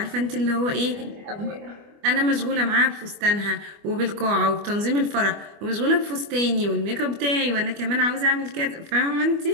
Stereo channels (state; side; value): late; left; 25 ms